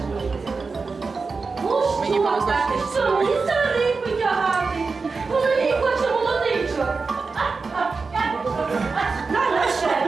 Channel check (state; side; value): quieter; left; 4.4 dB